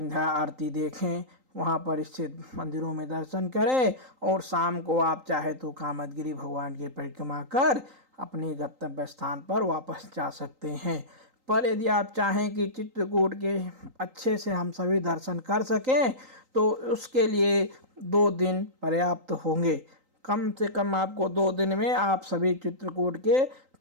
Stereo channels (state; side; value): late; left; 3.8 ms